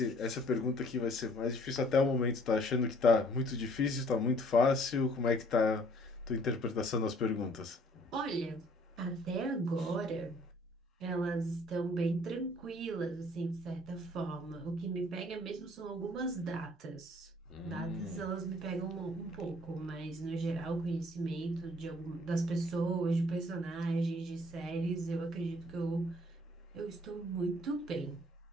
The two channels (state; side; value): normal; both; correlation 0.58